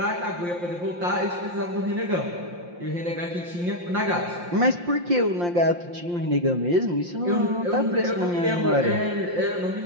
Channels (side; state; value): left; late; 5.7 ms